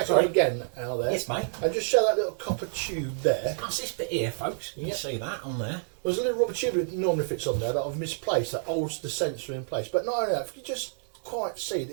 again out there, Yes, mate. and just show that little copper tube there. That's this bit here, folks. You can see that on there. There's a little rubber tube that normally fits on there that I've misplaced that holds the sensor in place. But not only that, if you just quite see it,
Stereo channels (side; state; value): left; silent; 59 dB below the other